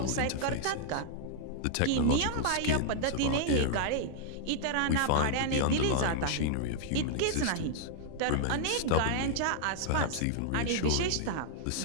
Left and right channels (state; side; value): different; both; correlation -0.01